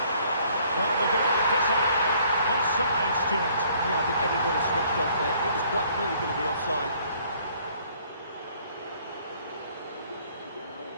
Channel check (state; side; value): inverted; both; correlation -0.61